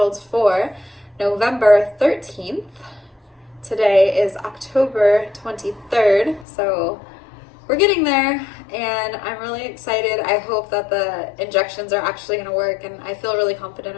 for November 13th. Today is October 23rd. So we're getting there, and I'm really excited. I hope that the injections are actually going to work, and I feel really confident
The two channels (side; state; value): right; drops out; at 6.5 s